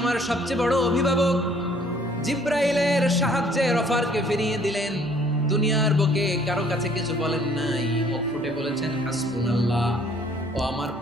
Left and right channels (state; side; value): normal; both; correlation 0.58